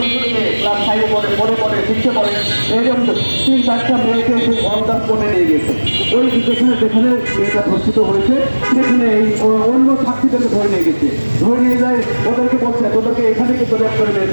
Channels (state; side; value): inverted; both; correlation -1.00